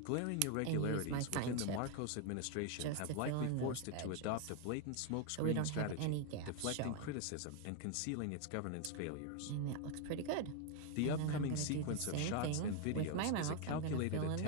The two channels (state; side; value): different; both; correlation 0.01